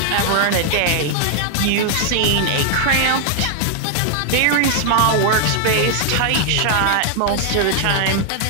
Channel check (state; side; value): different; both; correlation 0.00